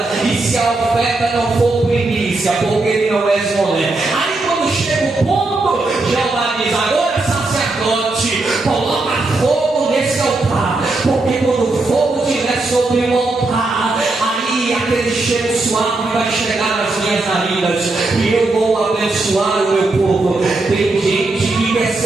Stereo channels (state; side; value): quieter; left; 3.2 dB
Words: e se a oferta não for primícia, porque ele não é esmolé. Aí quando chega o ponto, Jeová diz: agora sacerdote, coloca fogo nesse altar, porque quando o fogo estiver sobre o altar, aí aquele cheiro suave vai chegar nas minhas narinas e eu vou abençoar o meu povo. Tem gente que quer